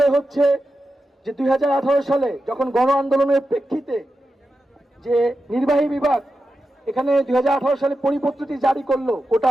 হচ্ছে যে 2018 সালে যখন গণ আন্দোলনের প্রেক্ষিতে যে নির্বাহী বিভাগ এখানে 2018 সালে পরিপত্রটি জারি করলো কোটা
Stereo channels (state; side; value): normal; both; correlation 0.90